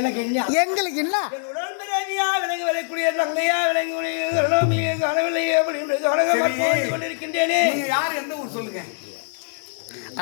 என்ன எங்களுக்கு என்ன உடன்பிறவியா விலங்கு விளைக்கூடிய தங்கையா விலங்கு கனவில்லையே அப்படின்னு கனகமாக கொண்டிருக்கின்றேனே. நீங்க யார், எந்த ஊர் சொல்லுங்க.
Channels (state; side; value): silent; right; digital silence